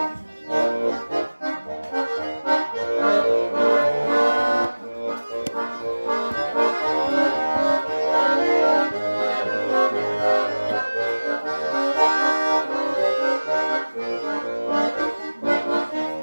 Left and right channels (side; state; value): both; inverted; correlation -1.00